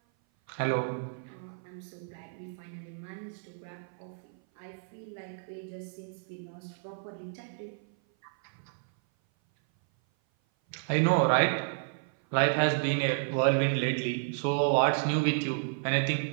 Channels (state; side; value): silent; left; 56 dB below the other